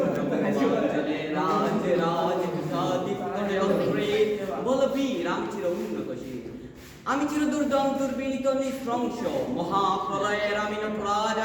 রাজ রাজ বলবীর আমি চির উন্নতশীল আমি চির দুর্দম দুর্বিনীত নিঃধ্বংস মহাপ্রলয়ের আমি নটরাজ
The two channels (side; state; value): both; identical; correlation 1.00